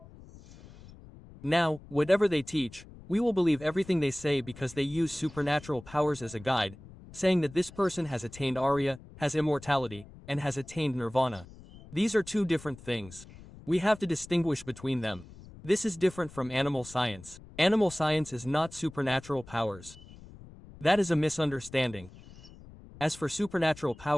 Now, whatever they teach, we will believe everything they say because they use supernatural powers as a guide, saying that this person has attained Arya, has immortality, and has attained nirvana. These are two different things. We have to distinguish between them. This is different from animal science. Animal science is not supernatural powers. That is a misunderstanding. As for supernatural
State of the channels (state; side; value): noise; left; rumble, 19 dB below the sound